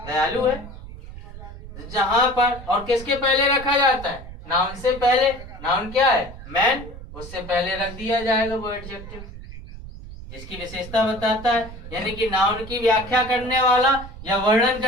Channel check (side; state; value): right; noise; rumble, 14 dB below the sound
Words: दयालु है। जहां पर और किसके पहले रखा जाता है? नाउन से पहले। नाउन क्या है? मैन, उससे पहले रख दिया जाएगा वो एडजेक्टिव जिसकी विशेषता बताता है। यानी कि नाउन की व्याख्या करने वाला या वर्णन